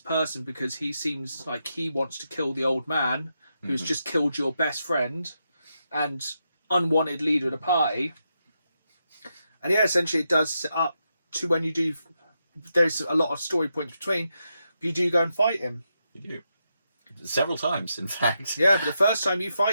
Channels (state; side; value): inverted; both; correlation -0.84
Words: because he seems like he wants to kill the old man who's just killed your best friend and unwanted leader of the party. And yeah, essentially it does set up to when you do... There's a lot of story points between, but you do go and fight him. You do. Several times, in fact. Yeah, but the first time you